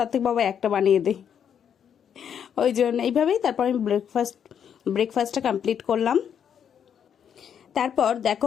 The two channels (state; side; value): quieter; right; 8.3 dB